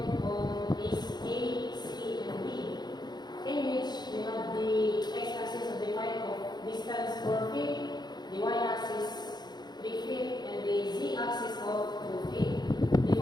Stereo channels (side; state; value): right; late; 0.20 ms